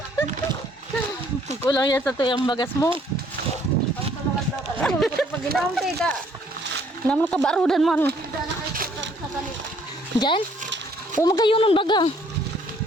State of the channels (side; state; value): both; normal; correlation 0.63